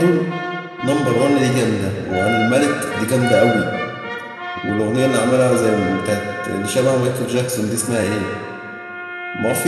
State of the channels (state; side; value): identical; both; correlation 1.00